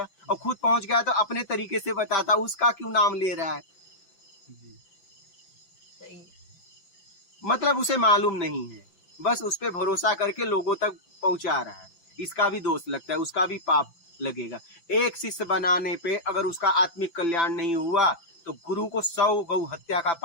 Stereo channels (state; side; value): late; right; 5.9 ms